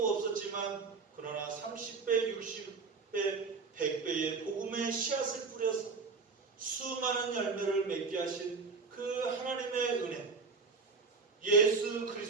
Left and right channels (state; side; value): quieter; left; 4.5 dB